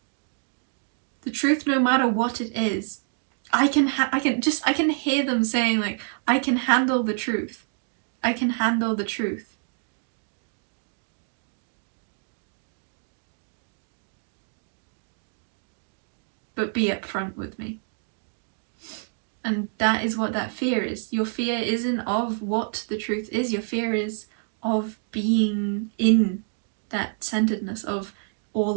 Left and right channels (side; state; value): left; silent; 60 dB below the other